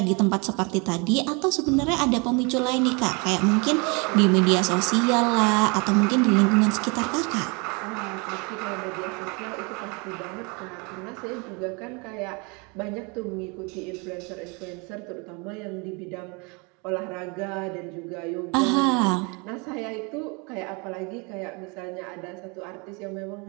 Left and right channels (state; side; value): quieter; left; 30.5 dB